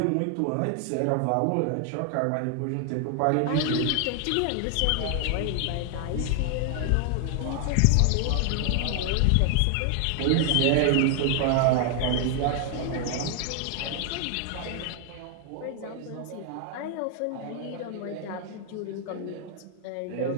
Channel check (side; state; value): both; different; correlation 0.00